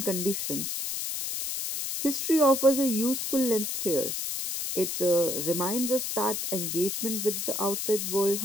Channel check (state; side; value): noise; left; hiss, 3 dB below the sound